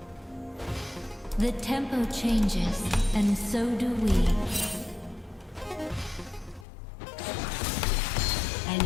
The tempo changes, and so do we. An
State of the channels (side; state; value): right; drops out; at 6.7 s